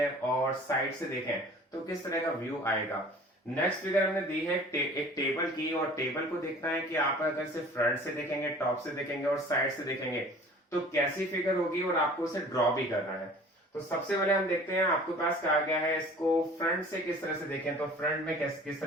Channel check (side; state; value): both; normal; correlation 0.46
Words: और साइड से देखें तो किस तरह का व्यू आएगा। नेक्स्ट फिगर हमने दी है एक टेबल की, और टेबल को देखना है कि आप अगर से फ्रंट से देखेंगे, टॉप से देखेंगे और साइड से देखेंगे तो कैसी फिगर होगी, और आपको उसे ड्रॉ भी करना है। तो सबसे पहले हम देखते हैं, आपके पास कहा गया है इसको फ्रंट से किस तरह से देखें, तो फ्रंट में किस